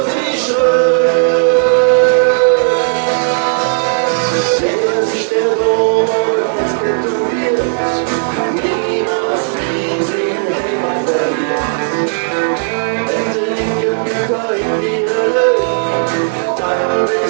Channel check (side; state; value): left; silent; digital silence